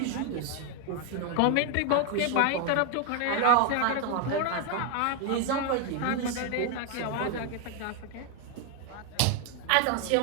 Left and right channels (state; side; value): different; both; correlation 0.01